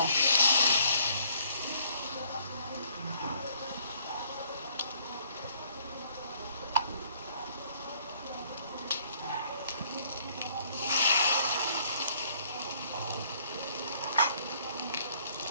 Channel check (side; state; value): both; inverted; correlation -0.62